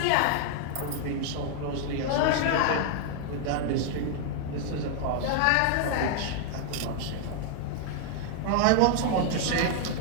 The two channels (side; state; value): both; different; correlation 0.00